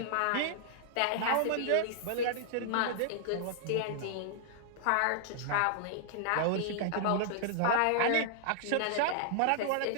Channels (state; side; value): different; both; correlation -0.01